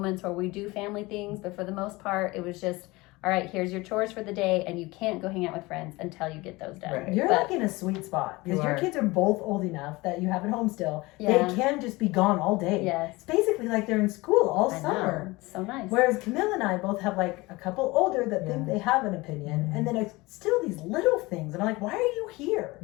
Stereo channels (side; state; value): right; quieter; 22.2 dB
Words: where we do family things. But for the most part, it was just, all right, here's your chores for the day, and you can't go hang out with friends until you get those done. Right. You're like in a sweet spot because your kids are both old enough that you have at home still. Yeah. They can just be gone all day. Yes. It's basically like they're in school all I summer. know. It's so nice. Whereas Camille and I both have like a couple older that think they have an opinion, and then it's still these little things. And I'm like, why are you here?